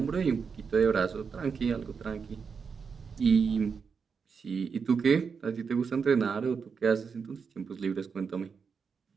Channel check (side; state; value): left; quieter; 5.8 dB